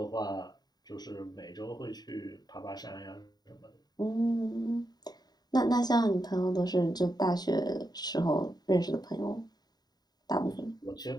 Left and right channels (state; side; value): late; right; 0.20 ms